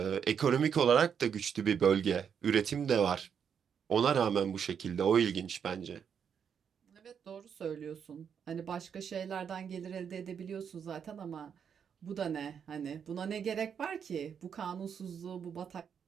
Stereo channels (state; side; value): quieter; left; 7.5 dB